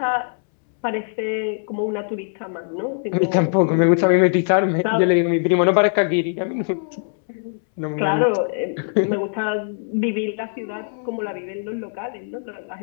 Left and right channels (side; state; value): right; silent; 65 dB below the other